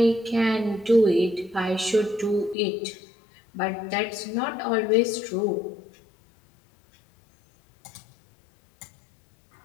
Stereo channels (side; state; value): right; drops out; at 2.6 s